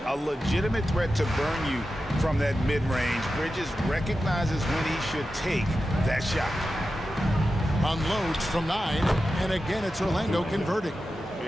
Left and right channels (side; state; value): both; normal; correlation 0.92